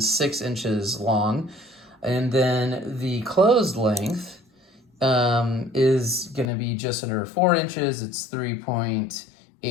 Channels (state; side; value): drops out; right; at 6.5 s